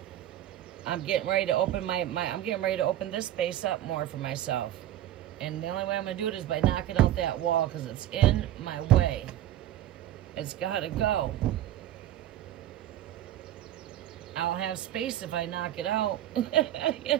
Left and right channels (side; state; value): left; quieter; 12.6 dB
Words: I'm getting ready to open I'm getting ready to open this space up more for myself. And the only way I'm gonna do it is by knocking out that wall, because it's in my way. It's gotta go. I'll have space if I knock it out. You